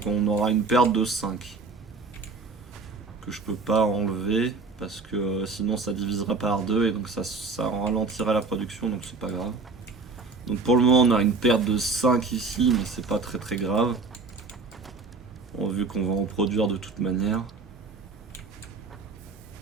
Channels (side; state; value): left; quieter; 4.0 dB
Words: on aura une perte de 5. Que je peux pas enlever parce que sinon ça divisera par 2 et donc ça ralentirait la production, donc c'est pas grave. Donc pour le moment on a une perte de 5 ici, mais c'est pas très très grave. Bon, vu qu'on va en produire de toute manière.